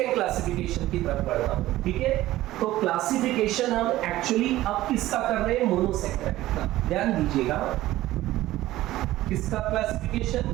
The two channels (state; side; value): quieter; left; 15.8 dB